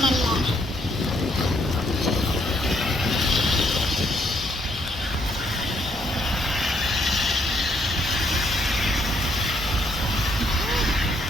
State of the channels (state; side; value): normal; both; correlation 0.71